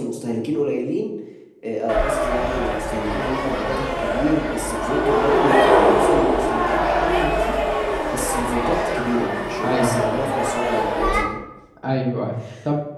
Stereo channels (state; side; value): identical; both; correlation 1.00